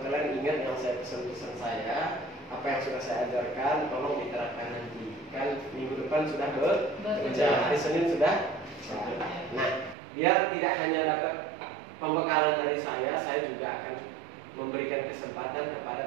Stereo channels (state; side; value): drops out; left; at 10.0 s